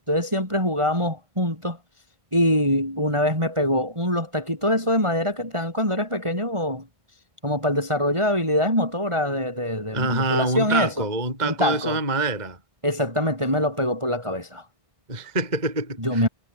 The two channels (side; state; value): left; late; 1.4 ms